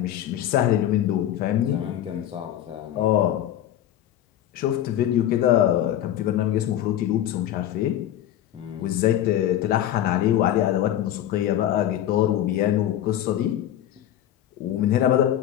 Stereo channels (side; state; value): right; quieter; 11.9 dB